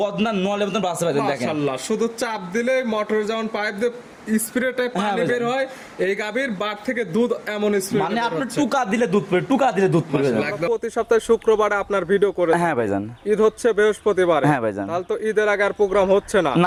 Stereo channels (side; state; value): both; identical; correlation 1.00